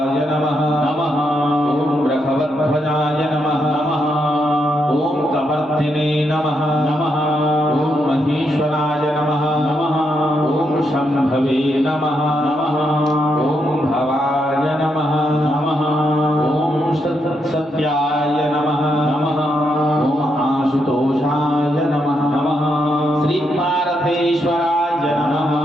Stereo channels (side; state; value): both; normal; correlation 0.80